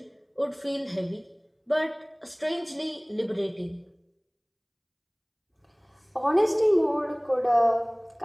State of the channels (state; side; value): identical; both; correlation 1.00